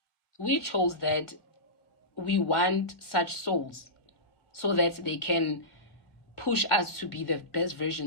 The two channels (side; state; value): right; late; 1.4 ms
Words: We chose that we want such souls so that they can push us to be the best